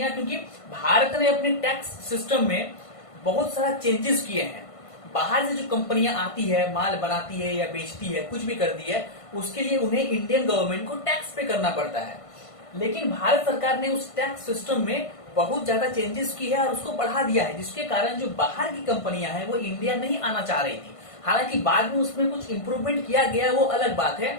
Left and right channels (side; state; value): right; late; 1.5 ms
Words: क्योंकि भारत ने अपने टैक्स सिस्टम में बहुत सारा चेंजेस किए हैं। बाहर से जो कंपनियां आती है, माल बनाती है या बेचती है, कुछ भी करती है, उसके लिए उन्हें इंडियन गवर्नमेंट को टैक्स पे करना पड़ता है। लेकिन भारत सरकार ने उस टैक्स सिस्टम में बहुत ज्यादा चेंजेस की है और उसको बढ़ा दिया है, जिसके कारण जो बाहर की कंपनियां हैं वो इंडिया नहीं आना चाह रही थी। हालांकि बाद में उसमें कुछ इंप्रूवमेंट किया गया, वो अलग बात